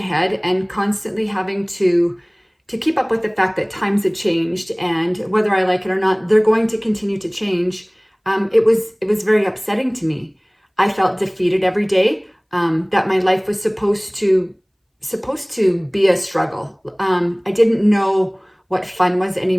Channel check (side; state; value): both; identical; correlation 1.00